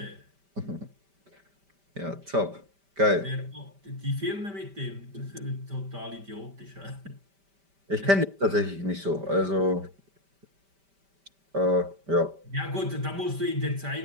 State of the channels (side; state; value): left; late; 5.1 ms